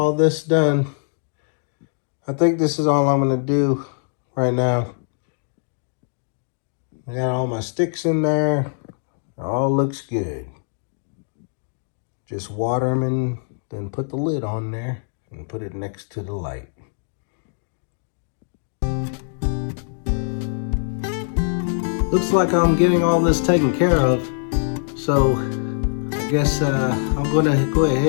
this done. I think this is all I'm gonna do right now. I got all my sticks in there. It all looks good. Just water them and then put the lid on there and put it next to the light. Looks like I'm getting all this taken care of, so I guess I'm gonna go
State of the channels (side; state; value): right; silent; digital silence